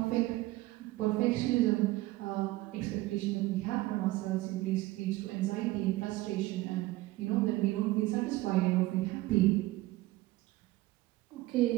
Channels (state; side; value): quieter; left; 18.4 dB